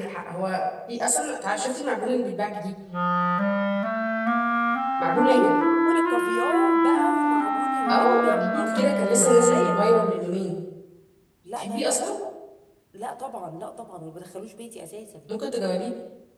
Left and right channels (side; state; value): both; identical; correlation 1.00